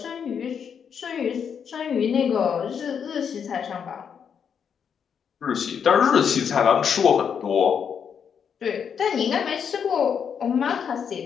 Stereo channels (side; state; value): right; quieter; 7.3 dB